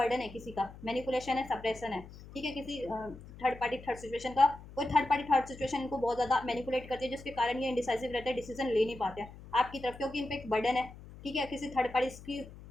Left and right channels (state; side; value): noise; left; hum, 17 dB below the sound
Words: है किसी का, मैनिपुलेशन है, सप्रेशन है। ठीक है, किसी थर्ड पार्टी थर्ड सिचुएशन का, कोई थर्ड पार्टी थर्ड सिचुएशन इनको बहुत ज़्यादा मैनिपुलेट करती है, जिसके कारण ये इंडिसाइसिव रहते हैं, डिसीजन ले नहीं पाते हैं आपकी तरफ, क्योंकि इन पर एक बर्डन है। ठीक है, किसी थर्ड पार्टी की